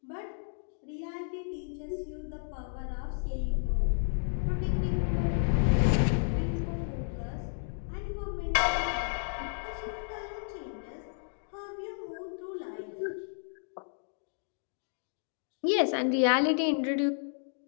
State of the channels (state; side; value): silent; right; digital silence